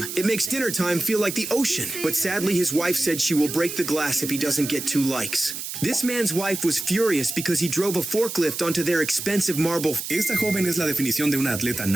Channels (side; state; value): right; noise; hiss, 7 dB below the sound